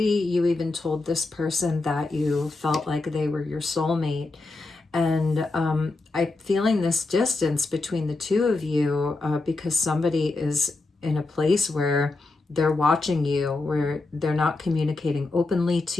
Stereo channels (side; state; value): right; quieter; 3.3 dB